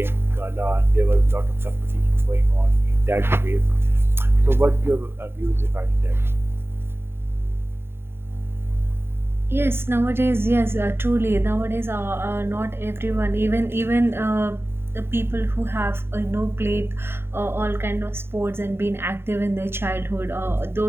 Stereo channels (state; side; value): late; left; 0.11 ms